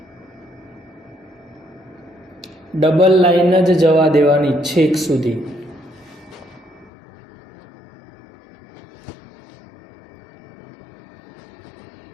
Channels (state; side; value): drops out; right; at 6.9 s